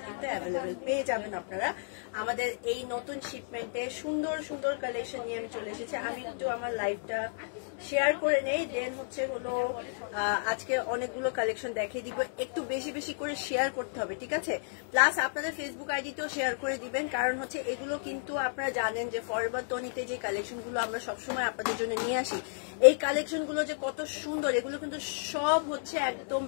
কিন্তু অ্যাভেলেবেল পেয়ে যাবেন আপনারা আমাদের এই নতুন শিপমেন্টে। সুন্দর সুন্দর কালেকশন নিয়ে আমি চলে এসেছি। আমি একটু আমার লাইভটা শেয়ার করে নেই, দেন হচ্ছে হলো আজকে অনেকগুলো কালেকশন দেখিয়ে দিব। একটু বেশি বেশি করে শেয়ার করতে হবে, ঠিক আছে? প্লাস আপনাদের ফেসবুক আইডিতেও শেয়ার করে দিবেন, কারণ হচ্ছে এগুলো কিন্তু আপনারা জানেন যে ফরএভার টনিতে যে কালেকশনগুলো আমরা সবসময় আপনাদের জন্য নিয়ে আসি, এই কালেকশনগুলো যে কত সুন্দর, এগুলো কিন্তু সব হচ্ছে একদম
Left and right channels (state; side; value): silent; right; digital silence